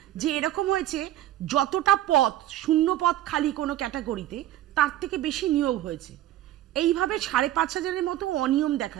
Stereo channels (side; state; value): left; quieter; 13.7 dB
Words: যে এরকম হয়েছে যতটা পদ, 0 পদ খালি কোনো ক্যাটাগরিতে, তার থেকে বেশি নিয়োগ হয়েছে। এইভাবে 5,500-এর মতো অনিয়ম